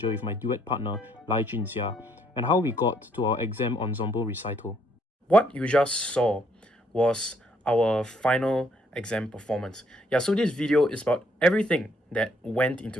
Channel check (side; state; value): both; normal; correlation 0.68